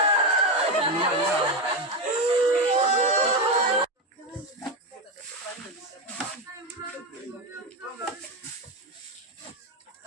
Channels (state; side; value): normal; both; correlation 0.12